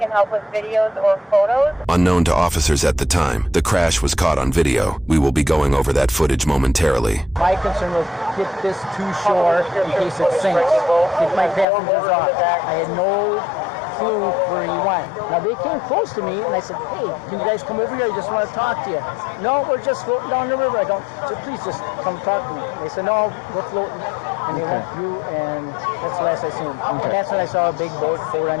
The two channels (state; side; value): drops out; right; at 11.7 s